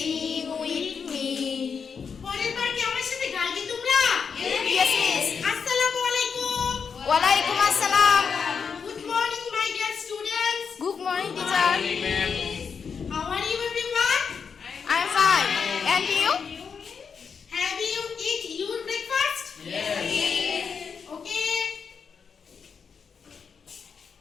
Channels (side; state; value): right; quieter; 6.1 dB